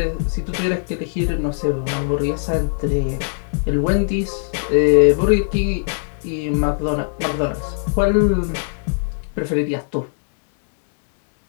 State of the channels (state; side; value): silent; right; digital silence